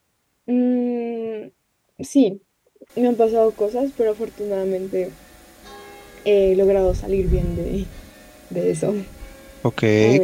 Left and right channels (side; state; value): both; identical; correlation 1.00